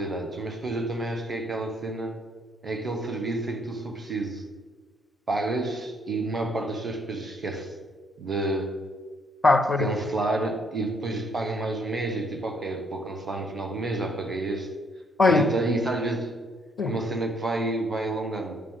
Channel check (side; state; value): both; normal; correlation 0.68